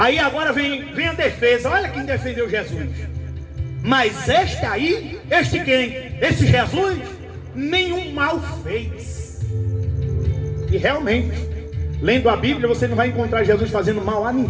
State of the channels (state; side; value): identical; both; correlation 1.00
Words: agora vem a defesa. Olha quem defendeu Jesus. Mas este quem? Esse Jesus nenhum mal fez. E realmente, lendo a Bíblia, você não vai encontrar Jesus fazendo mal a